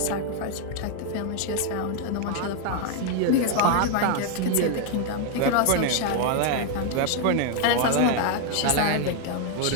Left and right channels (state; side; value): different; both; correlation 0.01